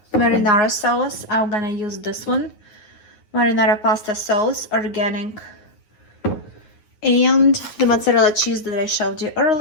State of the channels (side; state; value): right; late; 9.5 ms